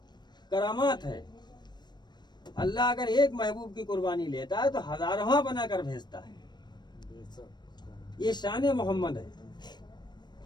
करामात है। अल्लाह अगर एक महबूब की कुर्बानी लेता है तो हजारवा बनाकर भेजता है। ये शान मोहम्मद है।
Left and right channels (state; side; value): late; right; 0.21 ms